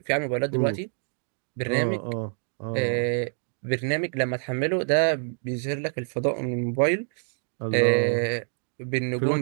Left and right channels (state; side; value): silent; left; 57 dB below the other